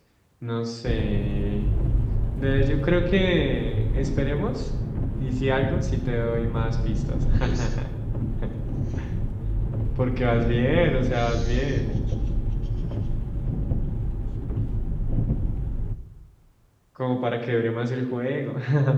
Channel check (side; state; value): both; identical; correlation 1.00